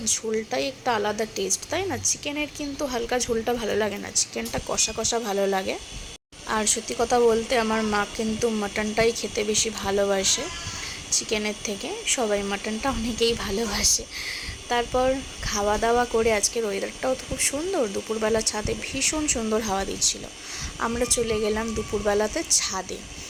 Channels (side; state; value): both; identical; correlation 1.00